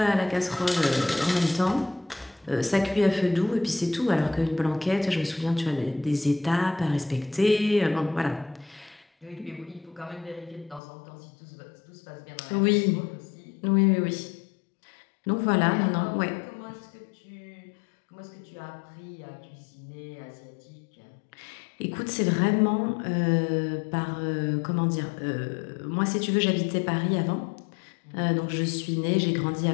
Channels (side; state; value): right; drops out; at 10.8 s